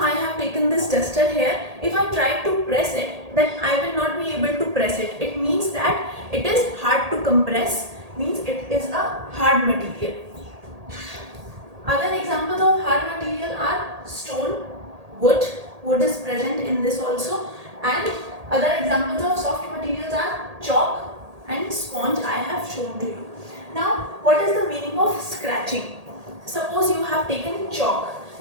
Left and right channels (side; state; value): left; late; 1.8 ms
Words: I have taken this duster here. If I try to press it, then I will not be able to press it. It means that it is hard to compress, means it is a hard material. Other examples of hard material are stone, wood. Wood is present in this also, and other examples of soft materials are chalk and sponge I have shown to you. Now what is the meaning of scratching? Suppose you have taken chalk.